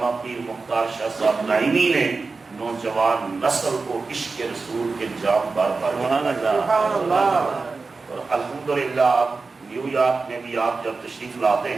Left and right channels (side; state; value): left; quieter; 4.1 dB